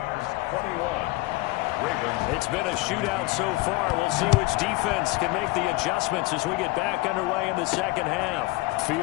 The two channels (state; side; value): quieter; right; 20.9 dB